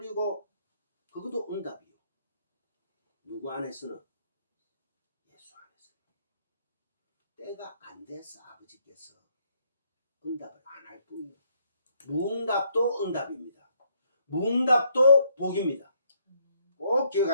그것도 응답이요. 누구 안에서는? 예수 안에서는. 때가 안 돼서 아버지께서 응답을 안 할 뿐이에요. 무응답도 응답입니다. 무응답도 복입니다. 꼭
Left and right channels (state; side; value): inverted; both; correlation -0.70